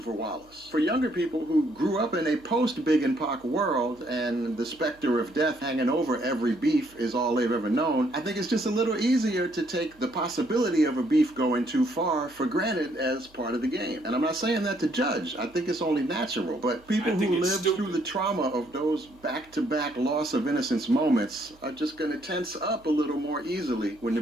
Wallace. For younger people who grew up in a post-Big and Pac world and the specter of death hanging over every beef is all they've ever known, I think it's just a little easier to take the possibility of a beef going too far for granted as part of the game. And I'm not saying that to judge. I think it's only natural. But people who lived through the trauma of those back-to-back loss of innocence moments are just going to tense up a little more easily when the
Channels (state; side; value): noise; right; hum, 28 dB below the sound